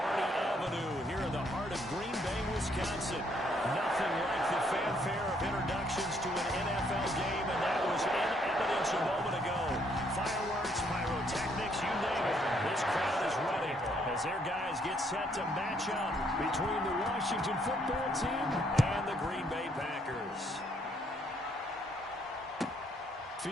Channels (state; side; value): normal; both; correlation 0.69